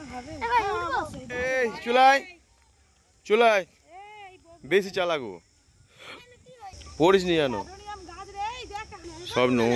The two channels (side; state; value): both; identical; correlation 1.00